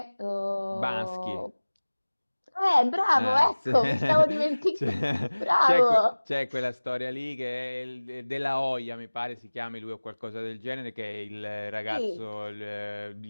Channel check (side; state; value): both; inverted; correlation -1.00